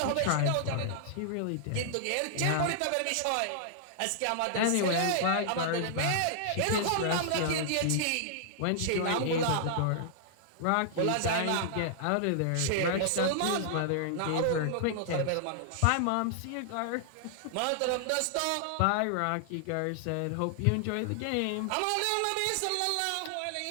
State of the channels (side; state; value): both; different; correlation -0.01